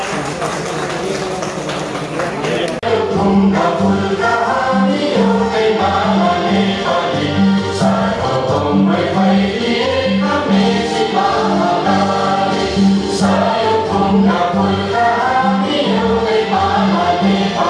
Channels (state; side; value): identical; both; correlation 1.00